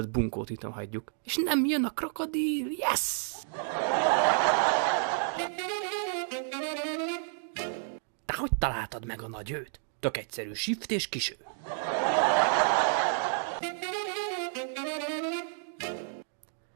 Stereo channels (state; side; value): silent; left; digital silence